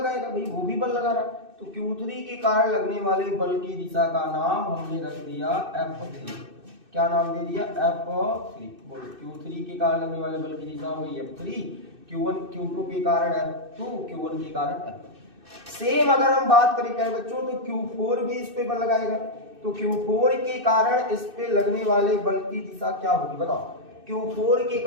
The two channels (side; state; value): left; late; 2.6 ms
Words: भाई वो भी बल लगा रहा, तो Q3 के कारण लगने वाले बल की दिशा का नाम हमने रख दिया F3। क्या नाम दे दिया, F3। बोलो, Q3 के कारण लगने वाले बल की दिशा हुई F3, Q2 के कारण F2, Q1 के कारण F1। सेम अगर हम बात करें प्यारे बच्चों तो Q4 भी इस पे बल लगाएगा, तो Q4 के कारण इस पे लगने वाले बल की दिशा क्या होगी बताओ। Q4 के